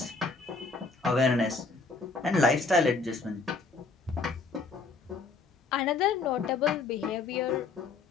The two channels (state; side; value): quieter; right; 4.2 dB